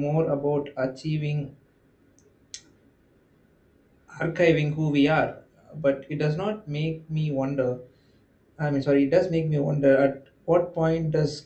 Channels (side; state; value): both; identical; correlation 1.00